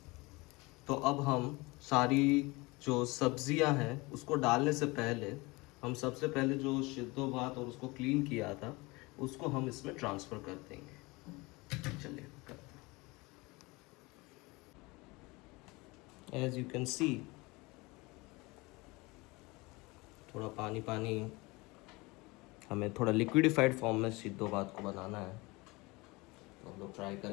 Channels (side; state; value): right; quieter; 24.1 dB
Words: तो अब हम सारी जो सब्जियां हैं उसको डालने से पहले हम सबसे पहले जो सिद्धो भात और उसको क्लीन किया था उसको हम इसमें ट्रांसफ़र कर देंगे। चलिए करते हैं। एज यू कैन सी थोड़ा पानी पानी, हमें थोड़ा लिक्विडिफाइड फॉर्म में सिद्धो भात को बनाना है, तो हम लोग ट्राई